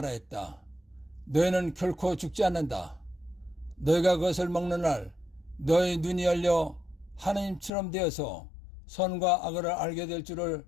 너희는 결코 죽지 않는다. 너희가 그것을 먹는 날 너희 눈이 열려 하느님처럼 되어서 선과 악을 알게 될 줄을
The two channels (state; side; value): drops out; right; at 7.7 s